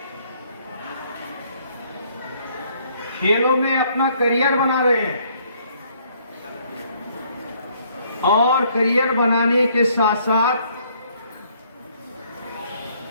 खेलों में अपना करियर बना रहे हैं और करियर बनाने के साथ साथ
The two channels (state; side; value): inverted; both; correlation -0.65